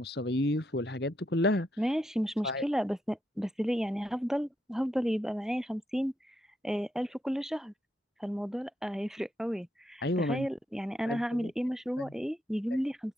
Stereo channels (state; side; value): normal; both; correlation 0.80